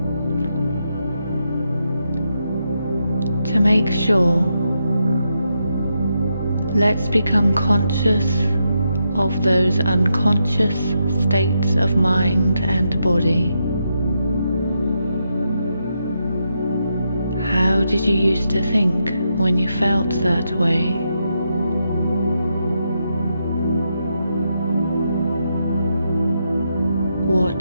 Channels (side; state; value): both; inverted; correlation -0.83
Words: To make sure, let's become conscious of those unconscious states of mind and body. How did you used to think when you felt that way? What